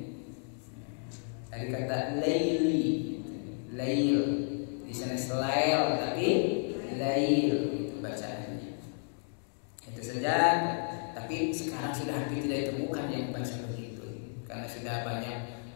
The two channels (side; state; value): right; silent; 56 dB below the other